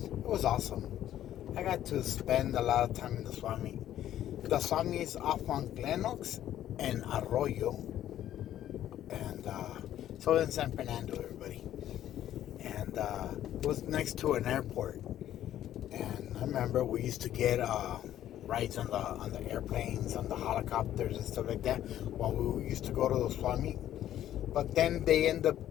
was awesome. I got to spend a lot of time in the Swami. The Swami is off on Glenox and Arroyo, and so in San Fernando, everybody. And it was next to an airport. And I remember we used to get rides on the airplanes, on the helicopters and stuff like that while we used to go to the Swami. But then they ended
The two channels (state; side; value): quieter; right; 12.0 dB